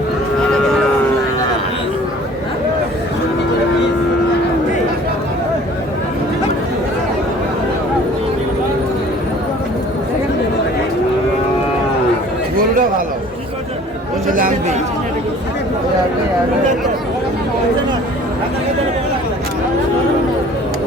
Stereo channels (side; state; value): both; normal; correlation 0.50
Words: গরুটা ভালো বলছে লাম্বি।